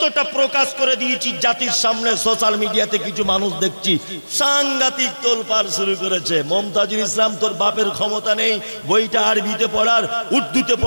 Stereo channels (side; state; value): both; inverted; correlation -1.00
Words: প্রকাশ করে দিয়েছি জাতির সামনে। সোশ্যাল মিডিয়াতে কিছু মানুষ দেখছি সাংঘাতিক তোলপাড় শুরু করেছে। মমতাজুল ইসলাম, তোর বাপের ক্ষমতা নেই বইটা আরবিতে পড়ার, উর্দুতে